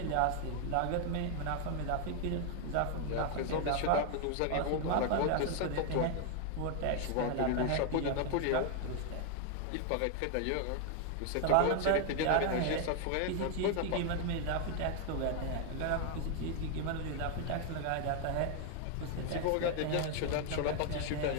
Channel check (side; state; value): both; different; correlation 0.00